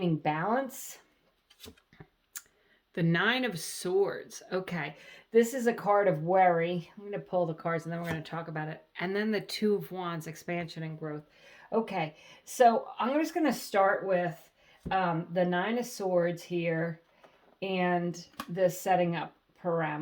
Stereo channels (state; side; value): identical; both; correlation 1.00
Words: balance. The Nine of Swords. Okay, this is a card of worry. I'm going to pull the cards and then we're going to talk about it. And then the Two of Wands, expansion and growth. Okay, so I'm just going to start with the Nine of Swords here and the setting up